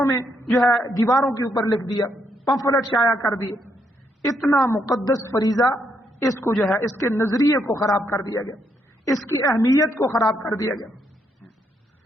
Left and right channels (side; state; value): both; normal; correlation 0.76